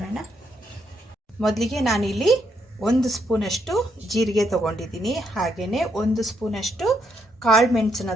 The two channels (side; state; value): both; normal; correlation 0.76